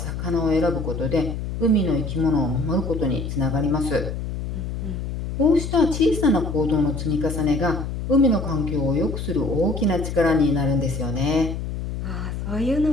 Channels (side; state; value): left; noise; hum, 5 dB below the sound